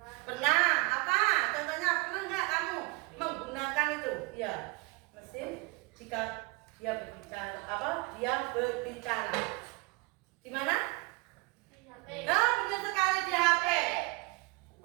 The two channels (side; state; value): left; quieter; 26.2 dB